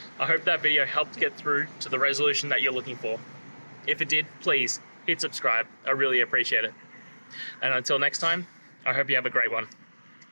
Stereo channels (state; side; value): inverted; both; correlation -1.00